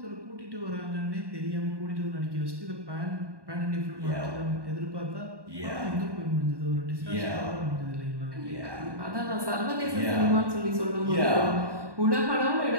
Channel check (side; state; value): left; late; 1.1 ms